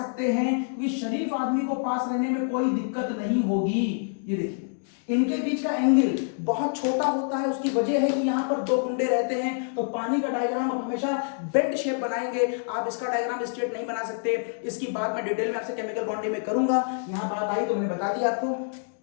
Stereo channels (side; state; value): right; silent; digital silence